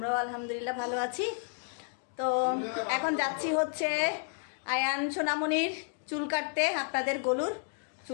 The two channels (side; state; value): right; silent; 57 dB below the other